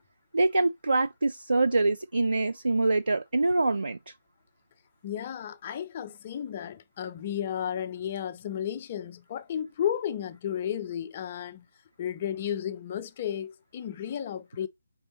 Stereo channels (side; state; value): both; inverted; correlation -0.81